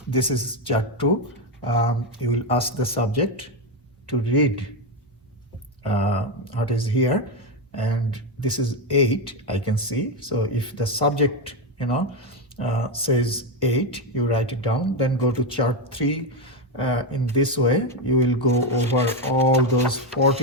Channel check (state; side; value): normal; both; correlation 0.09